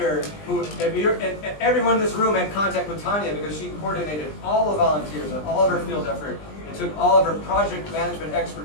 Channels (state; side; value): late; right; 20 ms